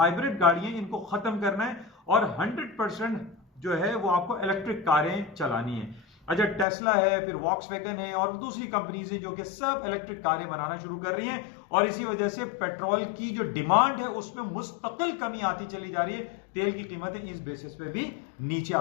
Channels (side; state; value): right; drops out; at 6.7 s